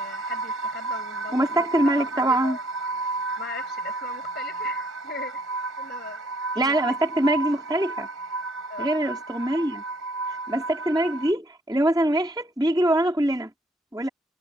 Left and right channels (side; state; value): both; normal; correlation 0.66